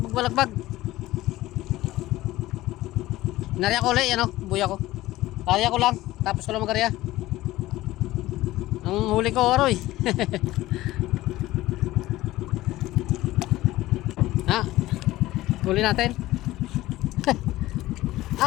Nariya ko ulit, buya ko. Kaya ko lang, tapos ko lang magarya. Ang huli ko, aroy. Ha? Huli natin.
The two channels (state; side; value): quieter; right; 16.7 dB